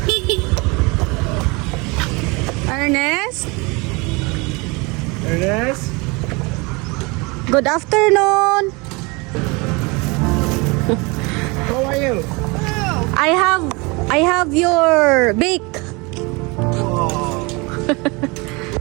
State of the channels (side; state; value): left; quieter; 27.0 dB